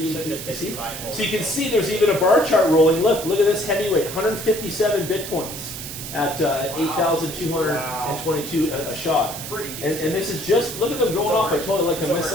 So just basically buy gold. So you can see there's even a bar chart rolling. Look at this heavyweight, 157 Bitcoins. at 8,222 a shot. Pretty And this is just, look at them going off. I totally like a It's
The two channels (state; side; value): noise; right; hiss, 9 dB below the sound